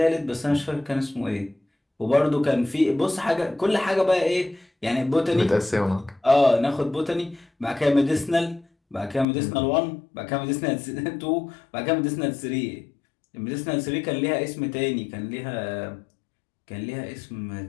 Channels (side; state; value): right; drops out; at 9.2 s